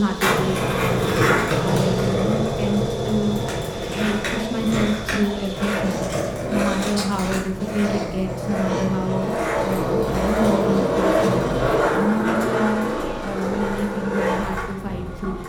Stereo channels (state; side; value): identical; both; correlation 1.00